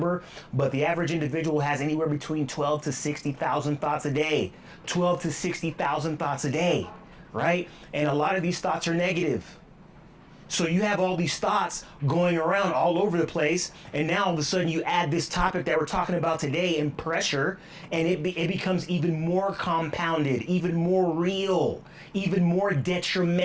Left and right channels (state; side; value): identical; both; correlation 1.00